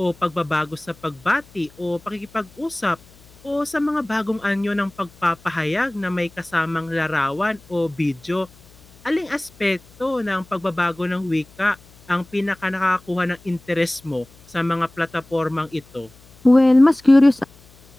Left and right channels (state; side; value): noise; left; hum, 26 dB below the sound